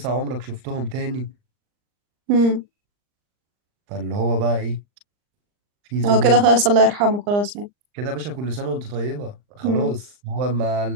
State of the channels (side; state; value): left; late; 39 ms